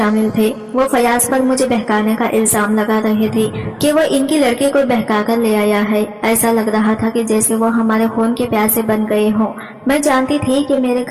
تھے۔ وہ فیاض پر مجھے بہکانے کا الزام لگا رہے تھے کہ وہ ان کی لڑکی کو بہکا کر لے آیا ہے۔ ایسا لگ رہا تھا کہ جیسے وہ ہمارے خون کے پیاسے بن گئے ہوں۔ میں جانتی تھی کہ میرے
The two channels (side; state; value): both; identical; correlation 1.00